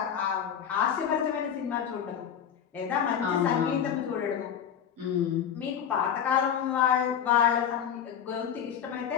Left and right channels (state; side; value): quieter; right; 8.5 dB